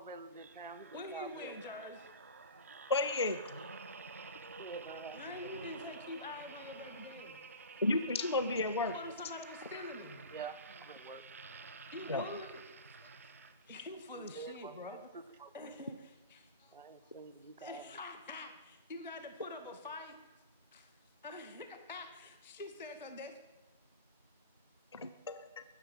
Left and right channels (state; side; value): inverted; both; correlation -0.35